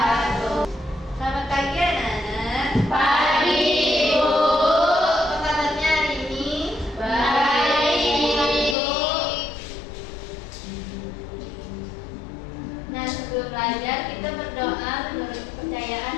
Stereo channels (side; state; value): right; drops out; at 8.8 s